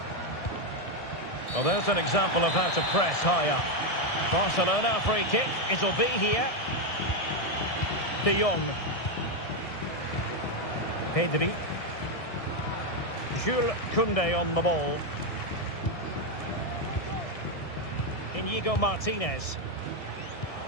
Well, there's an example of how to press high up. Barcelona, a free kick. It'll be here. De Jong. Pedri. Jules Koundé on the ball. Inigo Martinez.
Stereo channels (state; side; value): late; right; 1.7 ms